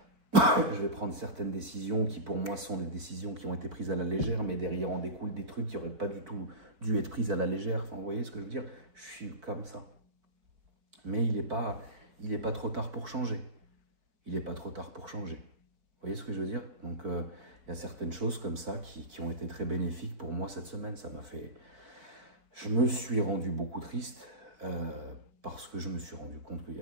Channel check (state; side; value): late; left; 4.5 ms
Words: vais prendre certaines décisions qui pour moi sont des décisions qui ont été prises à la légère, mais derrière en découlent des trucs qui n'auraient pas du tout dû être prises à la légère. Enfin, vous voyez ce que je veux dire? Je suis comme ça. Mais il est pas trop tard pour changer. Il n'est pas trop tard pour changer. Vous voyez ce que je veux dire? Donc, il y a certaines choses comme ça qui ont été très bénéfiques pour moi cette semaine. Ça m'a fait... Je me suis rendu beaucoup triste parce que je me suis rendu compte qu'il y